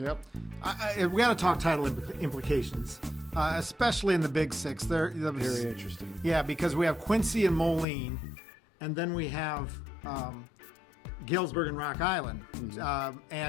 we got to talk title implications, especially in the Big Six. Very interesting. Yeah, because we have Quincy and Moline, and then we have Galesburg and Rock Island,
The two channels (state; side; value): drops out; right; at 7.9 s